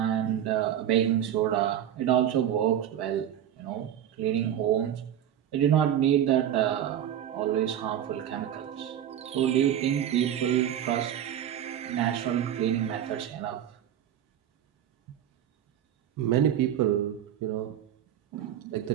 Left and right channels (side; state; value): left; quieter; 10.4 dB